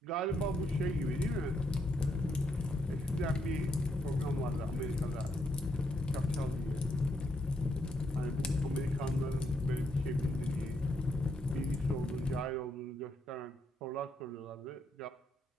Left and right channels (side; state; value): both; normal; correlation 0.77